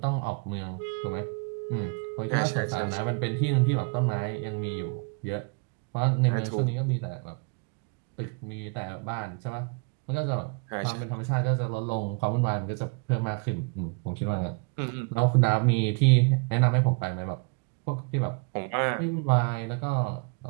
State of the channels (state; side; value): quieter; left; 34.9 dB